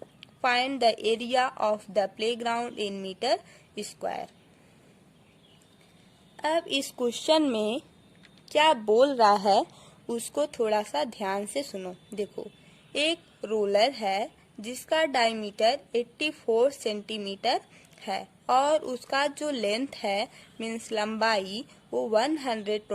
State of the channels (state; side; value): identical; both; correlation 1.00